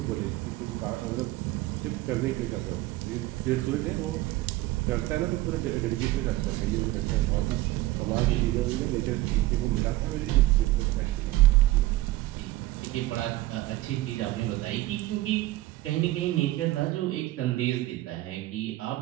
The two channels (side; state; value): left; quieter; 17.3 dB